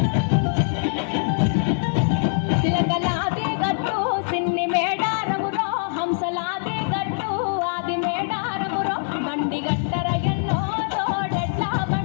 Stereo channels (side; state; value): right; silent; 63 dB below the other